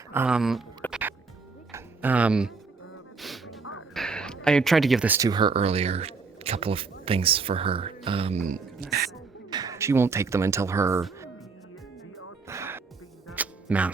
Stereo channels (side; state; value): left; quieter; 4.6 dB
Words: I tried to give this to her earlier. A couple of things for her. She won't take them until her